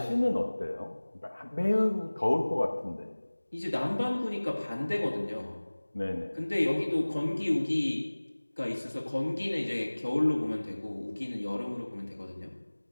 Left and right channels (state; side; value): inverted; both; correlation -1.00